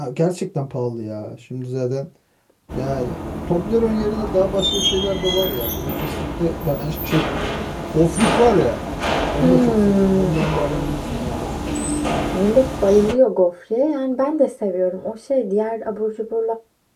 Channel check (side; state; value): both; identical; correlation 1.00